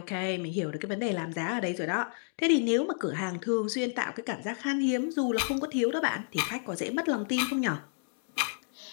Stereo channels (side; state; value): right; silent; digital silence